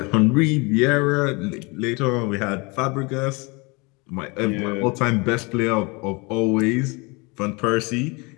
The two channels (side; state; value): right; quieter; 27.9 dB